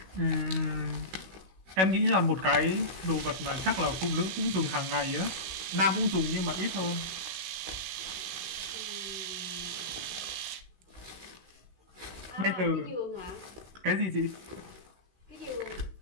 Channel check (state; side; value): late; left; 16 ms